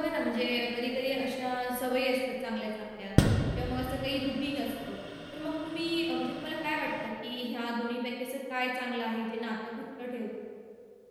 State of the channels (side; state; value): both; identical; correlation 1.00